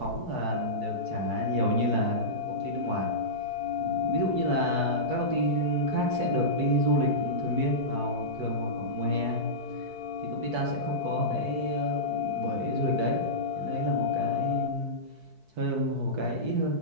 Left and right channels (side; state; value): left; late; 4.6 ms